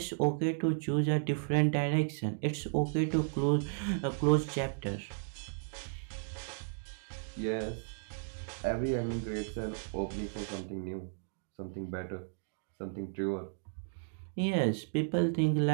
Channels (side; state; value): left; silent; digital silence